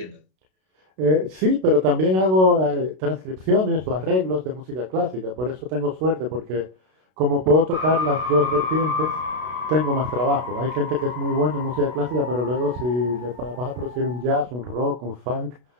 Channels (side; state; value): left; late; 32 ms